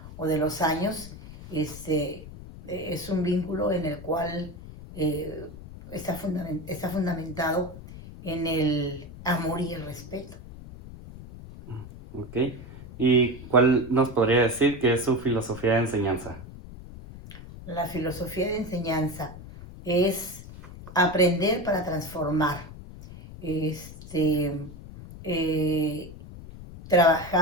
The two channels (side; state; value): left; noise; rumble, 15 dB below the sound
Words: o de los años. Este, es un vínculo en el cual eh, está fundamentado en el amor y el respeto. ¿Ok? ¿Y cuál nos podría decir que es su filosofía de enseñanza? La filosofía de enseñanza es aprender para transformar, este, eh,